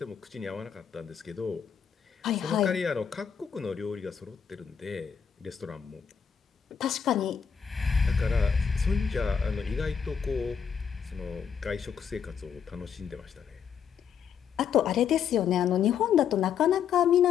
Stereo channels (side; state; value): right; quieter; 7.3 dB